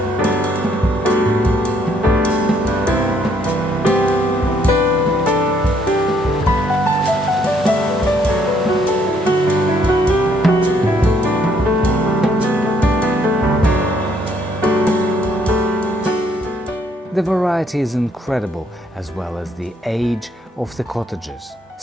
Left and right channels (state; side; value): normal; both; correlation 0.68